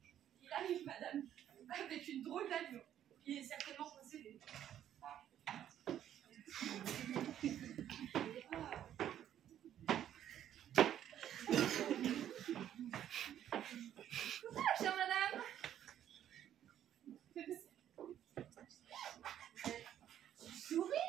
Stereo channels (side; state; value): left; quieter; 10.8 dB